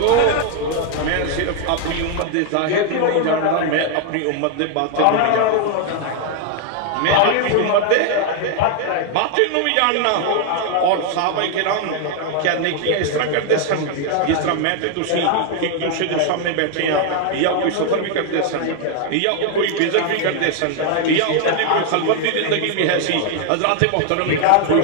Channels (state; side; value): different; both; correlation 0.00